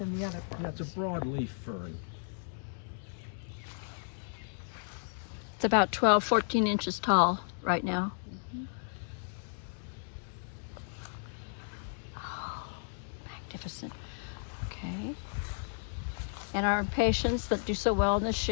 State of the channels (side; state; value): right; silent; digital silence